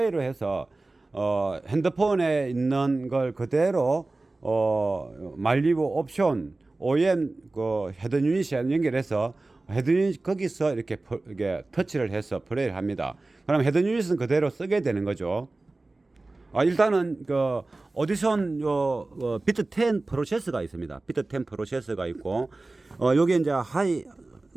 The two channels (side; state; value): left; quieter; 3.2 dB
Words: 해서 핸드폰에 있는 걸 그대로 말리부 옵션 OEM 그 헤드 유닛에 연결해서 헤드 유닛 거기서 이렇게 터치를 해서 플레이를 합니다. 그럼 헤드 유닛은 그대로 쓰게 되는 거죠. 일단은 그 오디션 비트 10 프로세서가 있습니다. 비트 10 프로세서가 있고 여기 이제 하이